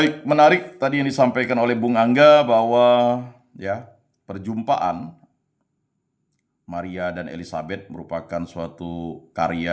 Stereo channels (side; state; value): both; identical; correlation 1.00